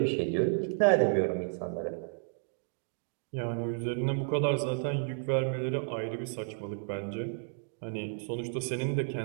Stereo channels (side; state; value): left; silent; 56 dB below the other